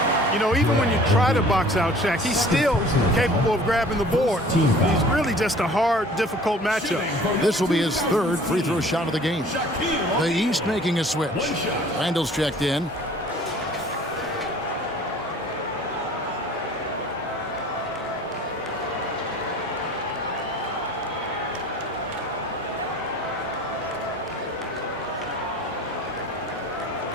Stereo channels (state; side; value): normal; both; correlation 0.49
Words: You know, even when you try to box out Shaq, he's still capable of grabbing the board. He's really just a hard, difficult matchup. This will be his third free throw shot of the game. The East making a switch. Randall's checked in.